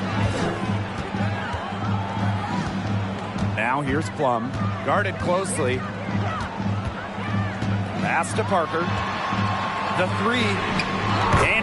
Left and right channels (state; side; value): identical; both; correlation 1.00